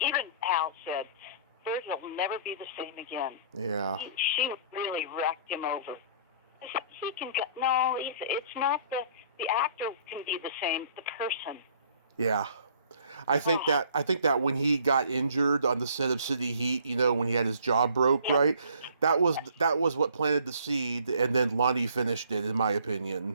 Even Hal said, Burt will never be the same again. Yeah. She really wrecked him over. He can go, no, it's not the actor can be the same, the person. Yeah. I think that when he got injured on the set of City Heat, when he had his jaw broke, right? That was what planted the seed, and then Lonnie finished it, in my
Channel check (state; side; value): inverted; both; correlation -0.55